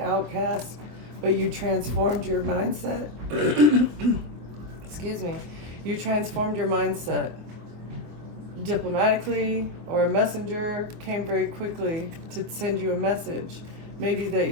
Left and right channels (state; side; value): late; left; 24 ms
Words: but you transformed your mindset. Excuse me. You transformed your mindset. Diplomatically, or a messenger came very quickly to send you a message. Maybe that